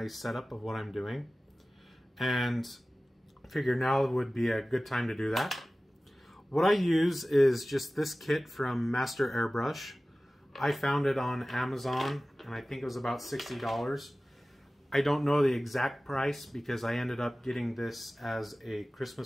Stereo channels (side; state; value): both; normal; correlation 0.97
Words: setup of what I'm doing. And figure now would be a good time to do that. What I use is just this kit from Master Airbrush. I found it on Amazon and I think it was about $60. I don't know the exact price because I ended up getting this as a